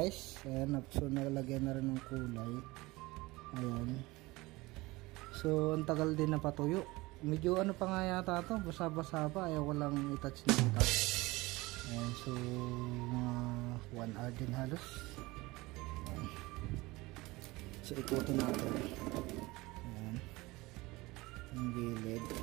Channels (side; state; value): left; quieter; 21.4 dB